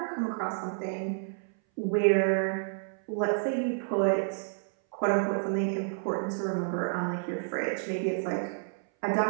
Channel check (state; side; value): silent; left; 58 dB below the other